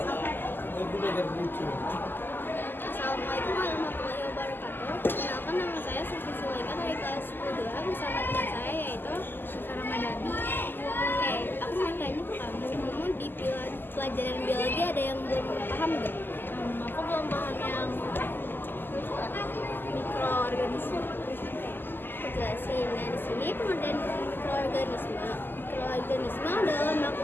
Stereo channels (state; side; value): late; right; 0.094 ms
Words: Assalamualaikum warahmatullahi wabarakatuh. Perkenalkan, nama saya Sufi Zulaika dari kelas 10 bersama teman saya yaitu Syifa Ramadhani. Oke, aku mau tanya ke kamu di pelajaran biologi ada yang belum paham nggak? Aku belum paham yang mikroorganisme. Aku jelasin. Nah, di sini pengertian mikroorganisme. Mikroorganisme adalah